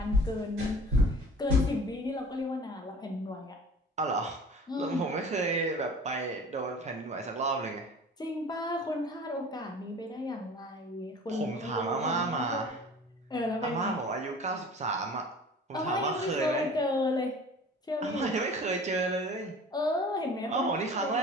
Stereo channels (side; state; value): both; normal; correlation 0.43